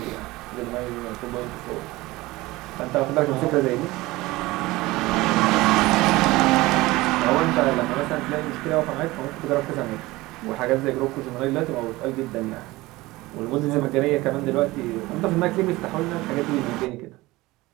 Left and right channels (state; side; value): quieter; left; 19.9 dB